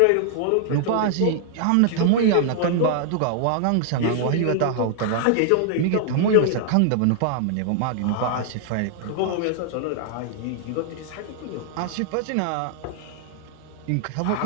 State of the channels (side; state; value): both; different; correlation -0.01